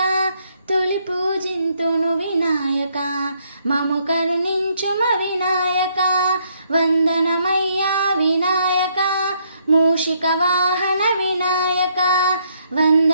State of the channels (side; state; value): both; inverted; correlation -0.71